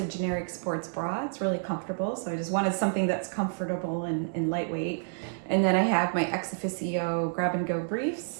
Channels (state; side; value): silent; left; digital silence